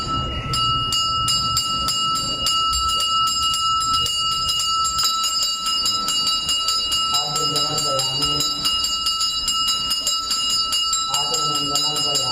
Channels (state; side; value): identical; both; correlation 1.00